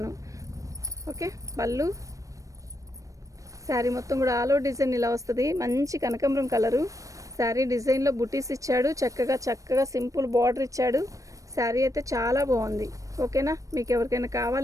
ఓకే, పళ్ళు శారీ మొత్తం కూడా ఆల్ ఓవర్ డిజైన్ ఇలా వస్తుంది. మంచి కనకాంబరం కలరు శారీ. డిజైన్లో బుటీస్ ఇచ్చాడు, చక్కగా సింపుల్ బార్డర్ ఇచ్చాడు. శారీ అయితే చాలా బాగుంది. ఓకేనా, మీకు ఎవరికైనా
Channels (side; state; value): left; late; 0.16 ms